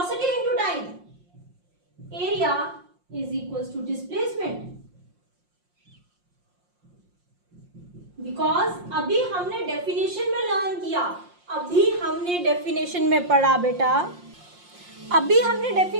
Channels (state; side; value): late; left; 5.6 ms